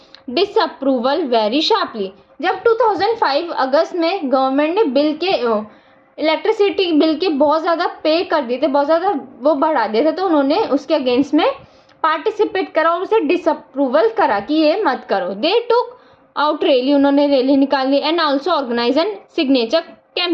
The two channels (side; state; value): both; identical; correlation 1.00